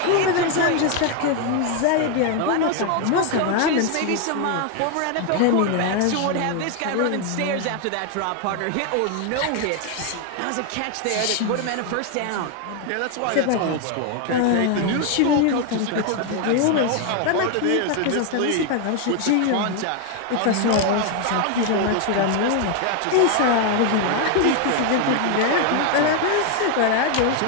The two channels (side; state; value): both; different; correlation 0.01